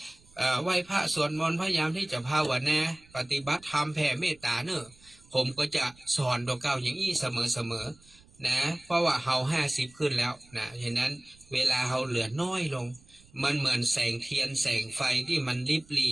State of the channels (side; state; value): right; noise; rumble, 27 dB below the sound